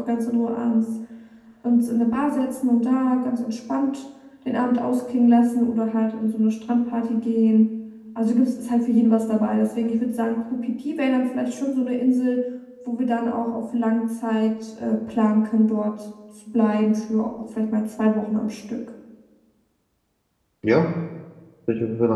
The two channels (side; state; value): both; identical; correlation 1.00